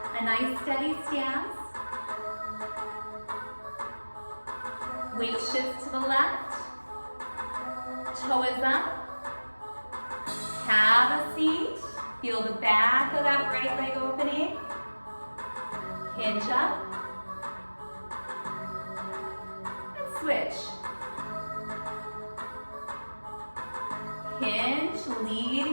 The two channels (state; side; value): inverted; both; correlation -1.00